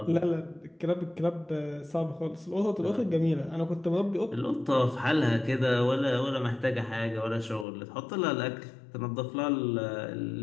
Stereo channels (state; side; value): drops out; right; at 7.7 s